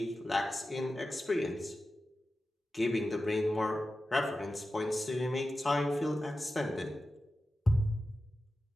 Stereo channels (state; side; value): normal; both; correlation 0.93